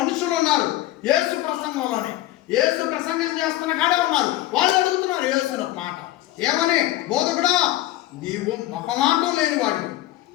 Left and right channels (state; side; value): quieter; right; 15.2 dB